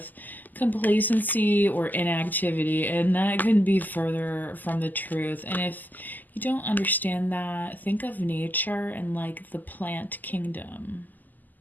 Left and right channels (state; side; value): late; right; 0.084 ms